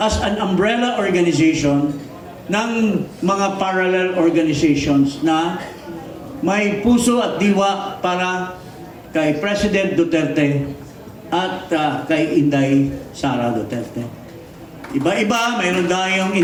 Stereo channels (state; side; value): identical; both; correlation 1.00